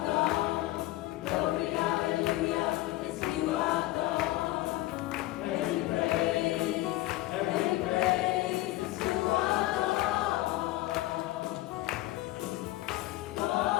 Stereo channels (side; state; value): right; quieter; 17.3 dB